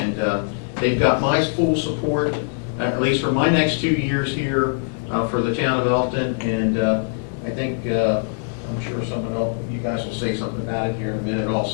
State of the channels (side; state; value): right; silent; 64 dB below the other